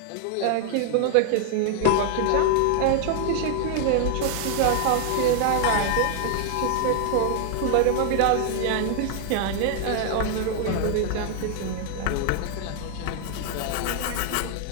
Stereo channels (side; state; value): both; different; correlation 0.00